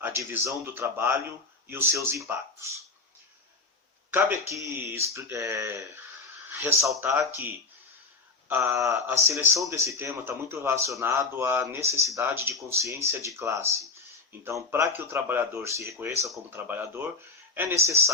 divisão do trabalho e os seus impactos. Cabe aqui ressaltar que a seleção desse tema está muito relacionado à necessidade de consciência de classe. Então, para que o trabalhador se reconheça como trabalhador, é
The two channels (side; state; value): right; quieter; 3.9 dB